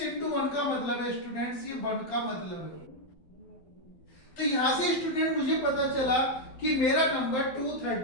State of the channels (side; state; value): right; late; 12 ms